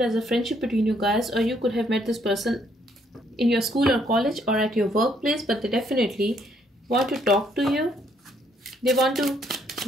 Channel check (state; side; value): normal; both; correlation 0.69